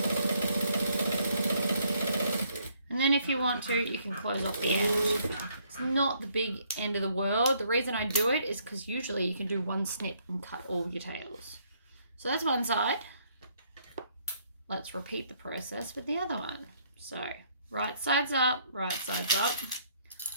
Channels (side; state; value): both; inverted; correlation -0.68